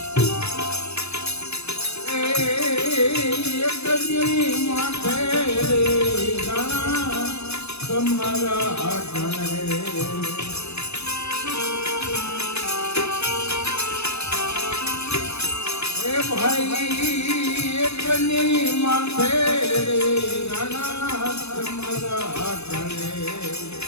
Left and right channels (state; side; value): late; right; 0.80 ms